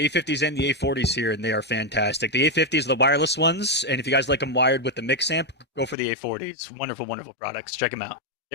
and the A40s here, and they are fantastic. The A50s are the wireless ones, and if you guys like them wired with the mix amp, go for the A40s. Wonderful products. Check them out.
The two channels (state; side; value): drops out; right; at 6.0 s